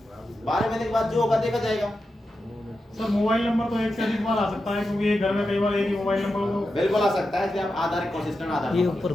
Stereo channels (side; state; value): both; normal; correlation 0.90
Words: 12 महीने के बाद जो होगा देखा जाएगा। सर मोबाइल नंबर तो एक से अधिक बार आ सकता है, क्योंकि एक घर में कई बार एक ही मोबाइल नंबर हो। बिल्कुल आ सकता है, आप आधार कंसिस्टेंट आधार ये ऊपर